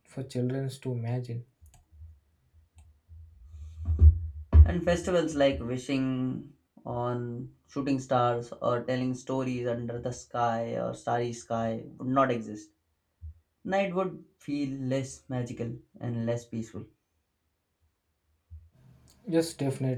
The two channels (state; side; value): identical; both; correlation 1.00